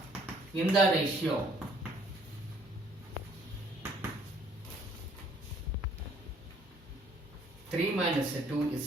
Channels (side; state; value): both; normal; correlation 0.61